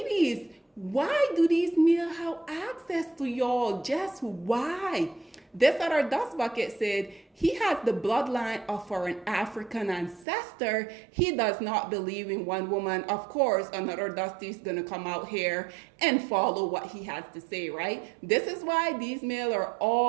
why do these men have access to y'all? Just why? This other dust bucket said he has the bloodline of an African ancestor. He does not believe in one woman. Of course, another Dusty is going to come out here and follow what he has to say, right? This is why these males are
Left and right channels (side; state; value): left; drops out; at 10.2 s